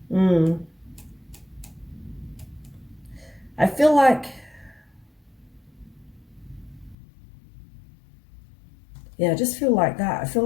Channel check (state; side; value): drops out; right; at 7.0 s